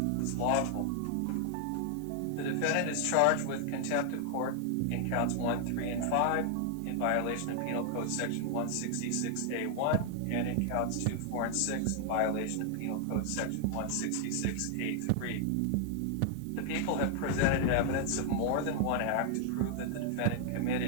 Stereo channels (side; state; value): both; different; correlation 0.00